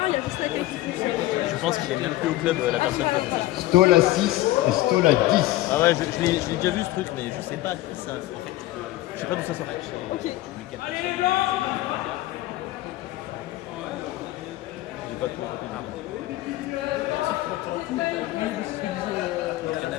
il y a juste la tête qui touche. Je pense qu'il est même plus au club, la personne qui a fait ça. Stoll à 6 et Stoll à 10. Ah ouais, je l'ai déjà vu ce truc, mais je sais pas qui ça. Je sais pas d'où ça sort. Ok. J'ai pas tout compris. Il y en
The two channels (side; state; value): right; quieter; 16.6 dB